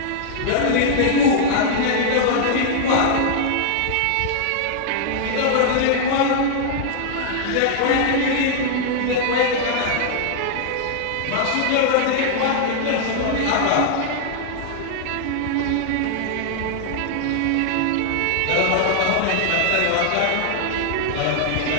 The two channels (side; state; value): both; different; correlation -0.01